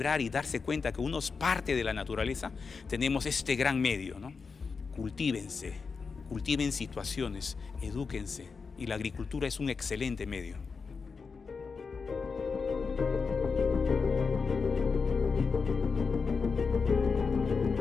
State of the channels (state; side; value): quieter; right; 5.0 dB